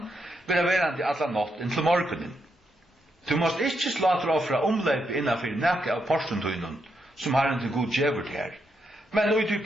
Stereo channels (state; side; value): normal; both; correlation 0.81